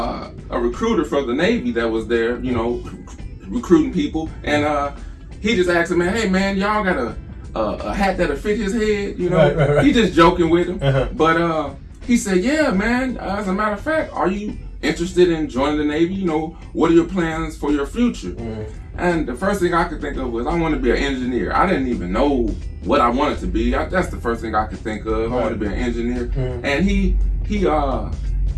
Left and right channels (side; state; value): both; identical; correlation 1.00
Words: recruiter for the Navy that was there, you know, recruiting people, and he just asked him, man, hey man, y'all got a hat that'll fit his head, you know? Right. He just joking with him, but he said, yeah, man, as a matter of fact, are you interested in joining the Navy? You know, what are your plans for your future? And the first thing I could think of was, I want to be an engineer. I didn't even know what I wanted to be. That's the first thing I could think of. I wanted to be an engineer. And he